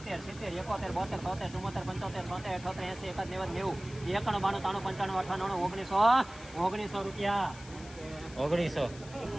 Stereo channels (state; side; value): noise; left; hiss, 18 dB below the sound